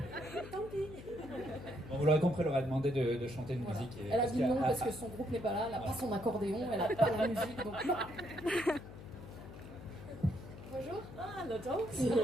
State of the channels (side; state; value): left; noise; hum, 14 dB below the sound